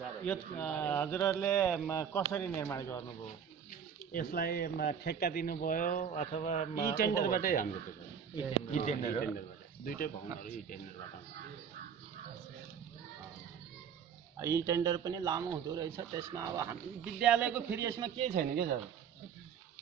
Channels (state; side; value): quieter; left; 7.5 dB